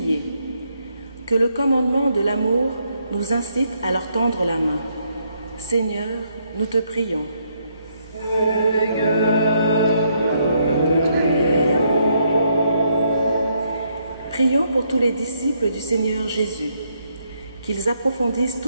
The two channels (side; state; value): both; inverted; correlation -0.74